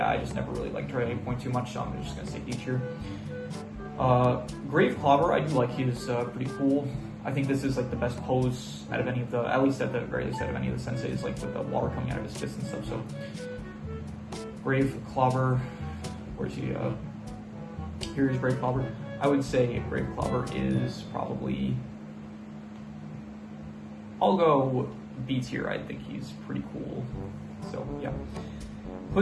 I just never really liked her at any point too much, so I'm just gonna say D tier. Grave Clobber, I do like. He's pretty cool. I think this is like the best pose out of any of the, at least at the very least out of any of the senseis, like with the water coming out of his fist and stuff. So Grave Clobber, where's he? Here's Grave Clobber. I would say Grave Clobber is probably, I'll go B tier. I think he's pretty cool. So yeah.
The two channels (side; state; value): both; identical; correlation 1.00